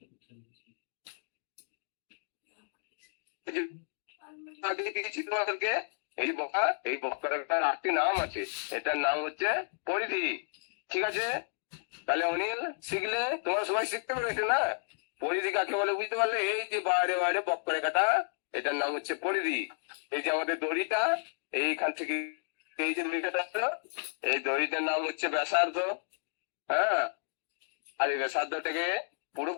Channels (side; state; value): right; silent; digital silence